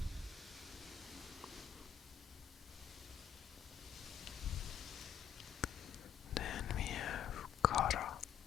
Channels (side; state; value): right; quieter; 9.0 dB